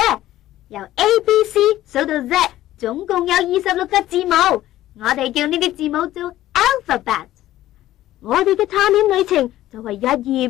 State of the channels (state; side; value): quieter; right; 14.3 dB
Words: 由 A、B、C 數到 Z， 總共有26個字母，我哋叫呢啲字母做 alphabet。我哋嘅探險旅程就係一頁